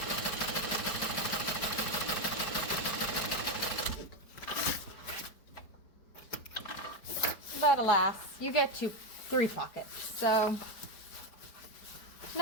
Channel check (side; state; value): right; late; 4.8 ms